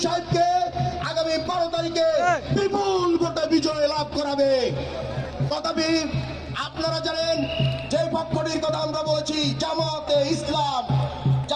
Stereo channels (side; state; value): both; identical; correlation 1.00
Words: সাহেবকে আগামী 12 তারিখে বিপুল ভোটে বিজয় লাভ করাবে। তথাপি আপনারা জানেন যে পক্ষটির কথা আমরা বলেছি, জামাতে ইসলাম।